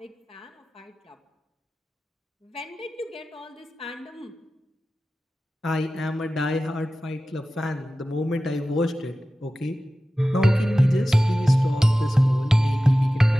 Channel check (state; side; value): normal; both; correlation 0.95